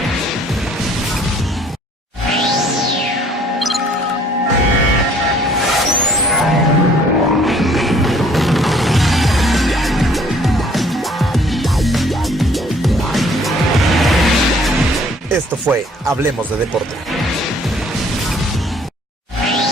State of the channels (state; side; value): normal; both; correlation 0.59